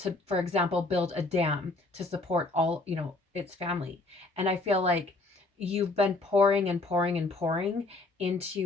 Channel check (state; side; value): quieter; right; 3.1 dB